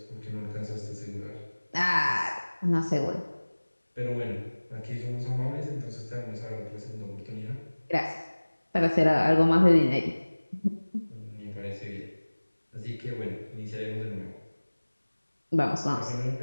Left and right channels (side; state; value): both; inverted; correlation -1.00